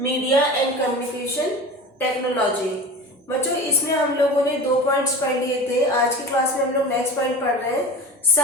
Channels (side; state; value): both; normal; correlation 0.33